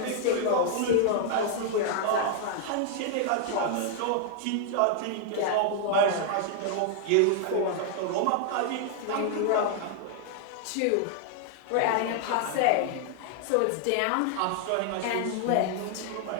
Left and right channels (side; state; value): both; different; correlation 0.00